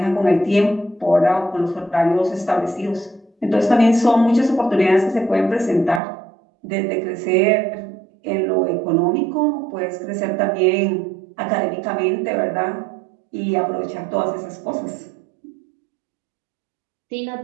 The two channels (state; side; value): drops out; left; at 6.0 s